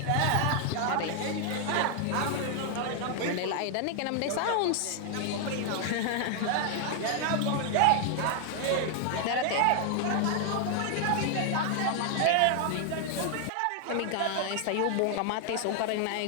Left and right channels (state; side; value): different; both; correlation 0.00